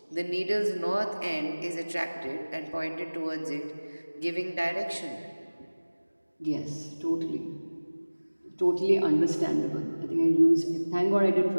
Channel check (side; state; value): both; inverted; correlation -1.00